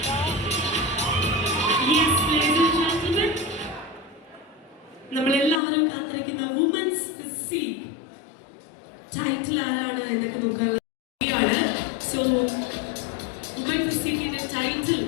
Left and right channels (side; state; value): right; drops out; at 5.6 s